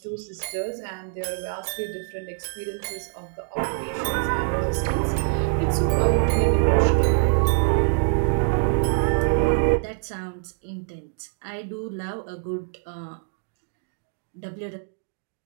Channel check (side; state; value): left; silent; 62 dB below the other